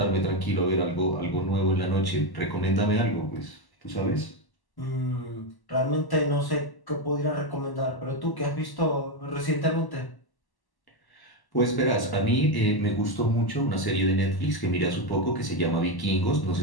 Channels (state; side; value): late; right; 1.1 ms